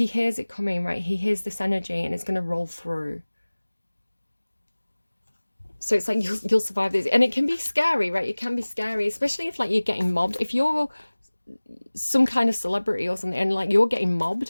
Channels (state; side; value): inverted; both; correlation -1.00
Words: hears it coming, right? He hears this energy and it's going to roll through. So it's like you'll survive this. And it can be scary, right? It can be scary, especially if like you're getting mobbed. If you're some kind of celebrity or something and like you're getting